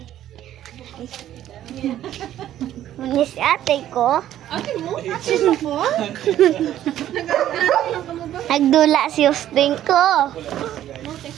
ate ko. Ate mo? Ate mo po? Nagdula si Austin ko.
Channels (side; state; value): left; quieter; 12.1 dB